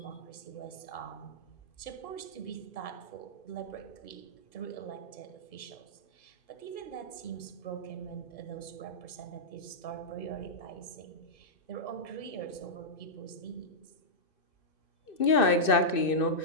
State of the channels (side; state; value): right; late; 2.6 ms